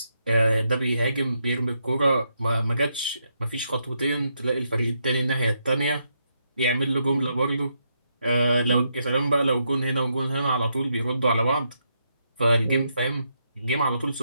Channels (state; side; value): inverted; both; correlation -0.80